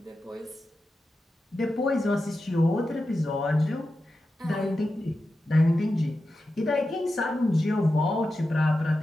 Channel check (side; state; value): both; normal; correlation 0.91